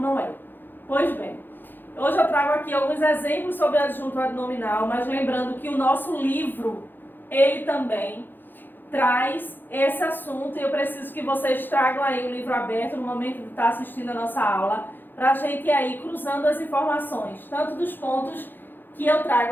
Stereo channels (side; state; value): right; late; 0.093 ms